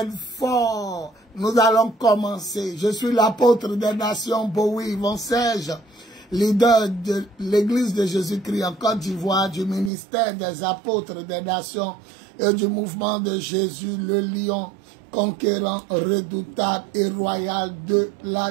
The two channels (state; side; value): drops out; left; at 9.9 s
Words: fort. Nous allons commencer. Je suis l'apôtre des nations, Bowie Von Serge, leader de l'église de Jésus-Christ en Côte d'Ivoire, du ministère des apôtres des nations et du mouvement de Jésus, le lion conquérant, redoutable et royal de